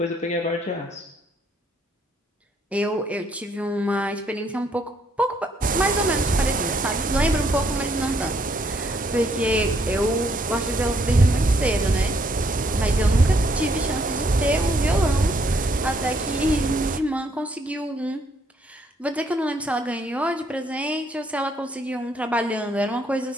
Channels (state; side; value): normal; both; correlation 0.70